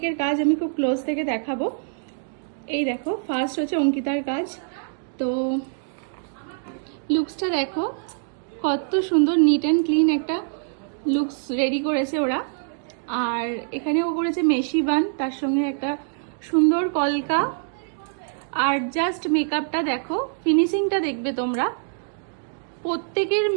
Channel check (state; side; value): silent; left; digital silence